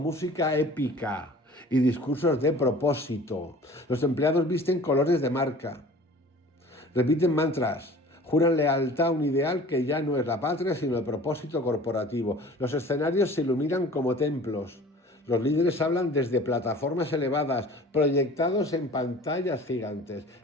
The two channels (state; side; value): normal; both; correlation 0.45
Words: épica y discursos de propósito. Los empleados visten colores de marca. Repiten mantras, juran lealtad a un ideal que ya no es la patria, sino el propósito corporativo. Los escenarios se iluminan como templos. Los líderes hablan desde plataformas elevadas, proyectados en pantallas gigantes.